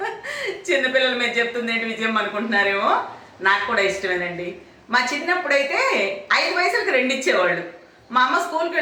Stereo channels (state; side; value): identical; both; correlation 1.00